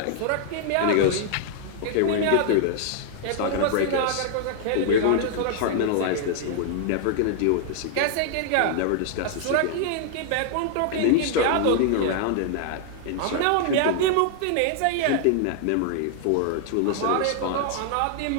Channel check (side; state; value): both; different; correlation 0.00